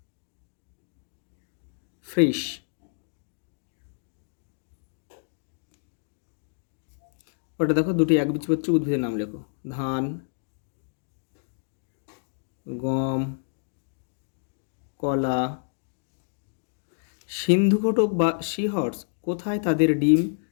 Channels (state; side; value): silent; right; digital silence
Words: Frisch. ওটা দেখো, দুটি একবীজপত্রী উদ্ভিদের নাম লেখো। ধান, গম, কলা। সিন্ধুঘটক বা সিহর্স কোথায় তাদের ডিম